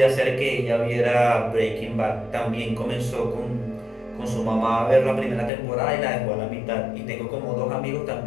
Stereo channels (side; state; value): right; drops out; at 5.5 s